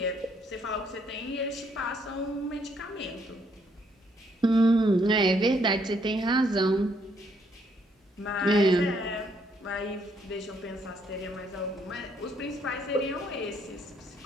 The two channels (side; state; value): both; normal; correlation 0.70